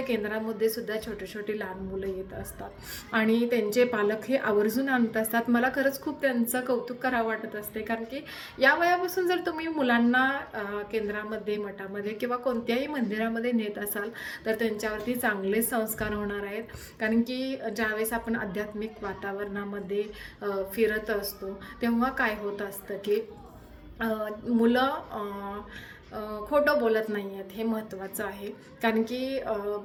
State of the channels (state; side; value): identical; both; correlation 1.00